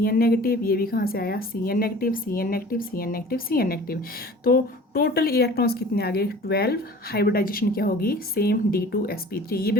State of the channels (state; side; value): normal; both; correlation 0.44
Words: negative. ये भी कहाँ से आया, Cn negative, Cn negative, Cn negative, Cn negative. तो टोटल इलेक्ट्रॉन्स कितने आ गए, 12। हाइब्रिडाइजेशन क्या होगी, सेम D2sp3। ये